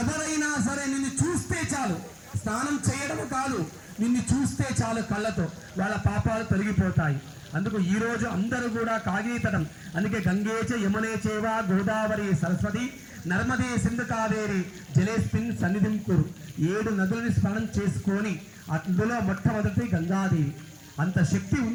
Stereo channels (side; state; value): both; identical; correlation 1.00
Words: ఎవరైనా సరే నిన్ను చూస్తే చాలు, స్నానం చేయడం కాదు, నిన్ను చూస్తే చాలు కళ్ళతో వాళ్ళ పాపాలు తొలగిపోతాయి. అందుకు ఈరోజు అందరూ కూడా కాగీతటం, అందుకే గంగేచ యమునే చేవ గోదావరి సరస్వతి నర్మదే సింధు కావేరి జలేస్మిన్ సన్నిధిం కురు. 7 నదులని స్నానం చేసుకొని అందులో మొట్టమొదటి గంగాదేవి. అంత శక్తి